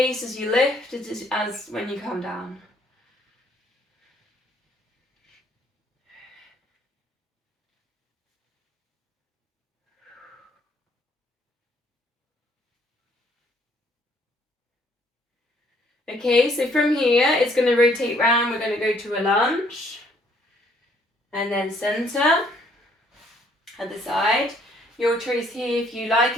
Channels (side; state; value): both; normal; correlation 0.64